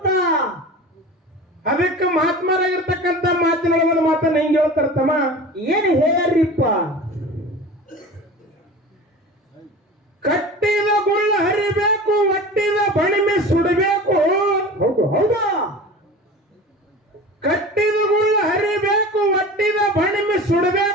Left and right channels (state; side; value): normal; both; correlation 0.36